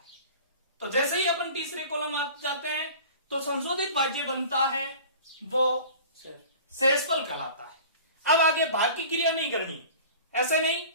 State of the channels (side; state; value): both; inverted; correlation -0.41